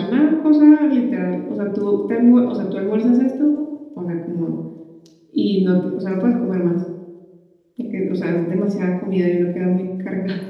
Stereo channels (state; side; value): identical; both; correlation 1.00